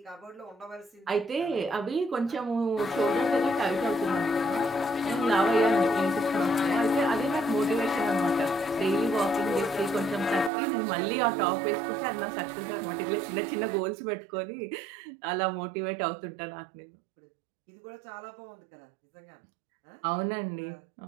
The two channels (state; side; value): drops out; left; at 10.5 s